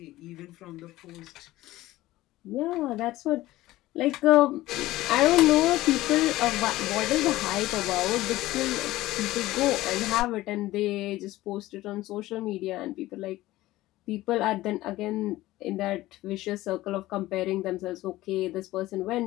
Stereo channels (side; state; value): right; quieter; 16.9 dB